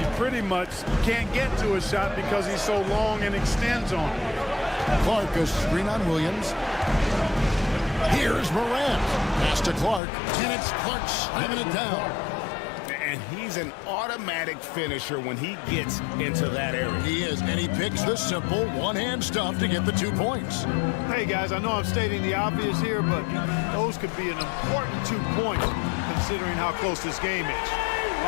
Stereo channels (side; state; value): right; drops out; at 10.0 s